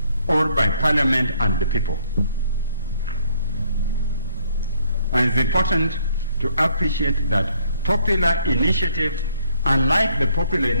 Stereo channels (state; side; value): inverted; both; correlation -0.66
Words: or by Parliament and the people. And it's important to appreciate that popular initiative, unlike the popular